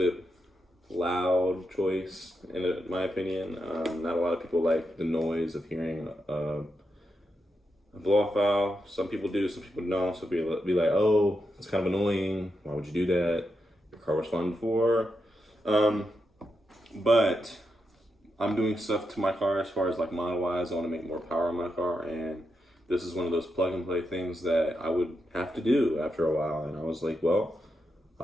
loud choice, in my opinion. Not a lot of people like the noise of hearing a blow-off valve. Some people do, some people don't. So be like, oh, it's kind of annoying. Why would you do that? Your car was fun before. But I'm doing stuff to my car as far as like model-wise. I want to make more power in my car, and this is one of those plug-and-play things that I would have to do after a while. And I was like, well,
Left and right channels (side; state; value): both; normal; correlation 0.85